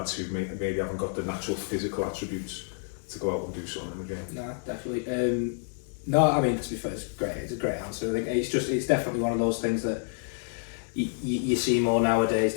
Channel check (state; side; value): silent; right; digital silence